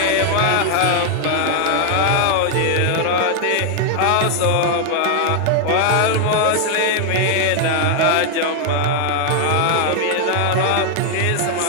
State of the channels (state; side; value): different; both; correlation 0.00